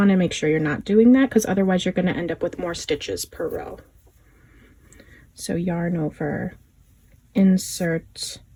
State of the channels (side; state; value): both; identical; correlation 1.00